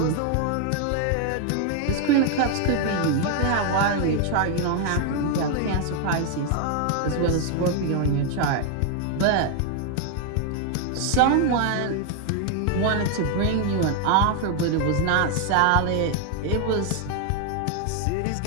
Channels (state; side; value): different; both; correlation 0.00